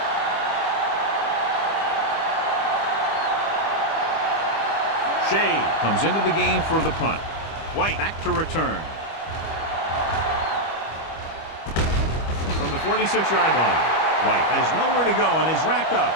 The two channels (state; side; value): late; right; 25 ms